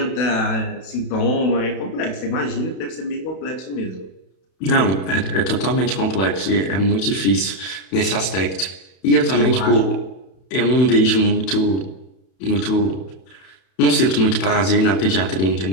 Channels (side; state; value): right; late; 32 ms